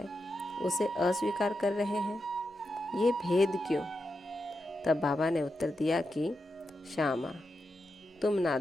उसे अस्वीकार कर रहे हैं। ये भेद क्यों? तब बाबा ने उत्तर दिया कि श्यामा, तुम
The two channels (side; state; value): both; normal; correlation 0.88